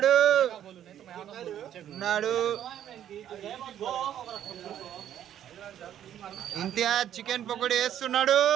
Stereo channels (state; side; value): quieter; left; 10.7 dB